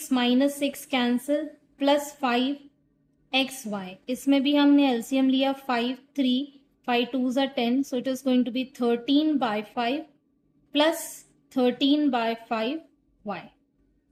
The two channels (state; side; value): identical; both; correlation 1.00